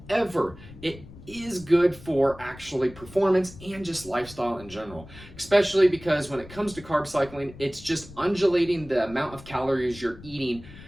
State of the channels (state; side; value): noise; left; rumble, 18 dB below the sound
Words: it is good for actually performance and just lifestyle in general, especially because when it comes to carb cycling, it's just undulating the amount of calories you're eating